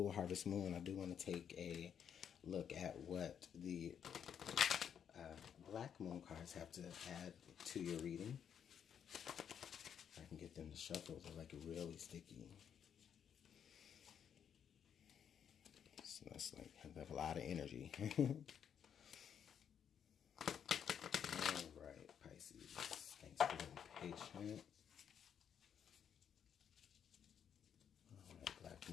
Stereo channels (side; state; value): right; quieter; 8.3 dB